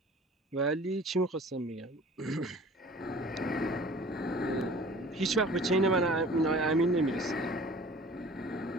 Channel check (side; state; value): both; normal; correlation 0.46